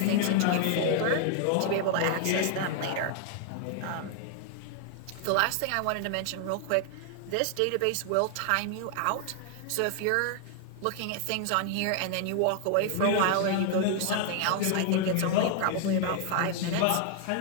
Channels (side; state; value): both; different; correlation 0.00